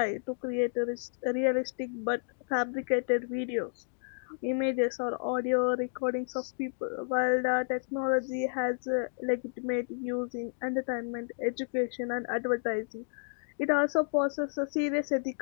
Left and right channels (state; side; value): silent; right; digital silence